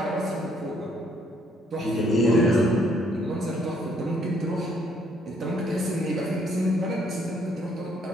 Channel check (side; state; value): both; normal; correlation 0.67